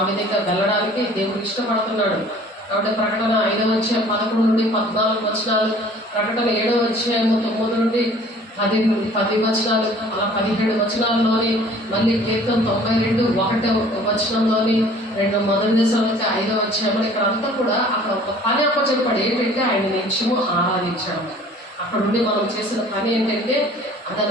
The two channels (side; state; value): both; normal; correlation 0.51